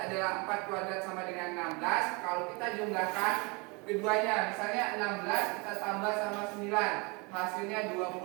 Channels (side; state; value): left; quieter; 29.2 dB